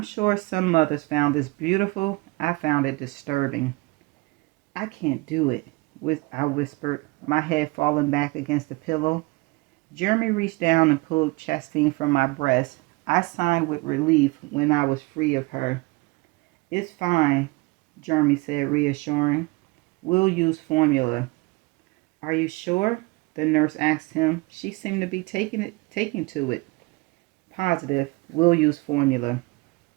sure some mothers found this beautiful. I found it disturbing. I can't do it, I whispered, my head falling back against the pillow. Jeremy reached down and pulled Chastine from my breast. I sighed with relief when I was free of her. It's fine, Jeremy said, reassuring. We'll use formula. Are you sure? The nurse asked him. She seemed to be taking to it. Positive. We'll use formula.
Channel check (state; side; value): quieter; left; 24.5 dB